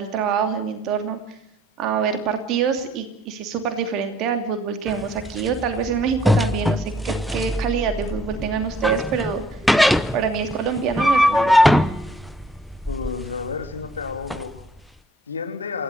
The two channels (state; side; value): normal; both; correlation 0.63